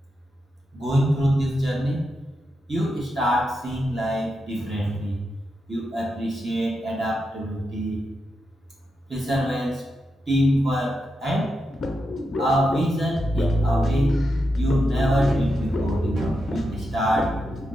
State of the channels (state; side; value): normal; both; correlation 0.86